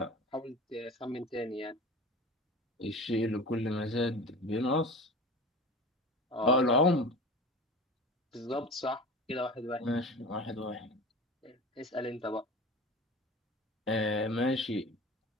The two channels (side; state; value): both; normal; correlation 0.34